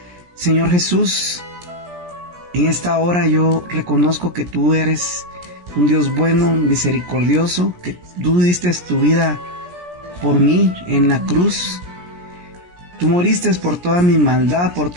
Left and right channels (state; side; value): late; left; 17 ms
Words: Señor Jesús, en esta hora yo reconozco que tú eres un Dios bueno, misericordioso, que tú diste tu vida por mí en la cruz. Tú moriste por toda mi maldad, por